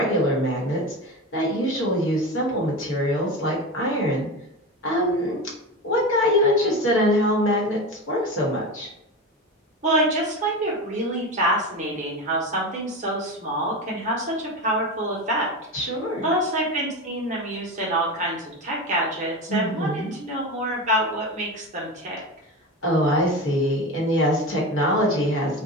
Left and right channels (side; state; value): both; normal; correlation 0.24